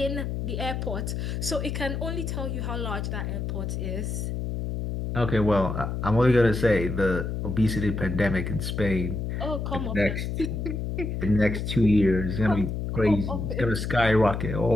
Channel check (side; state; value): left; noise; hum, 3 dB below the sound